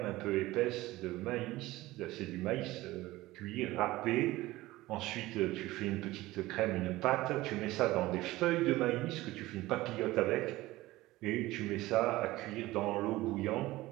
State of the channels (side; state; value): left; quieter; 18.1 dB